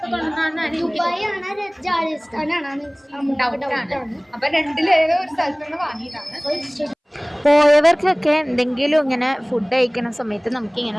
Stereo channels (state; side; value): identical; both; correlation 1.00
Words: കൊണ്ടുവന്നാണ്. അപ്പൊ രണ്ടിലേതോ ഒരു സ്ഥലത്തുനിന്ന് വാങ്ങിയതാണ്. പോയവർക്കൊക്കെ എന്തെങ്കിലും ഇങ്ങനെ ഫുഡ് കഴിക്കുന്ന സമയത്ത്